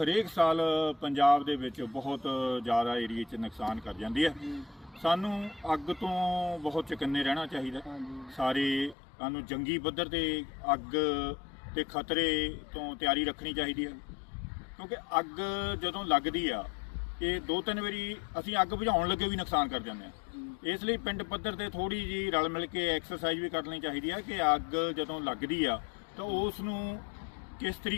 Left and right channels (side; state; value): right; drops out; at 9.0 s